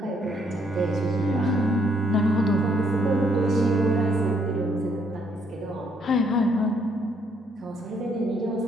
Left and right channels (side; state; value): both; normal; correlation 0.70